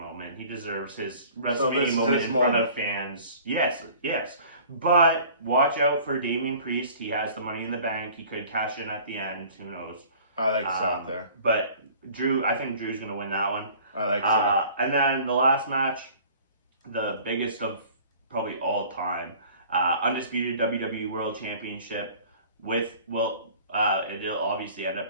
He deserves his WrestleMania moment in front of fans. Yes. But watch out for Damian Priest. He has the Money in the Bank. He could cash in at the end. Who knows? I like Seth there. But I think Drew's going to win that one. I like Seth. And then the last match, the biggest of probably all time, undisputed WWE World Championship it'll obviously end up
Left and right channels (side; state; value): both; inverted; correlation -0.48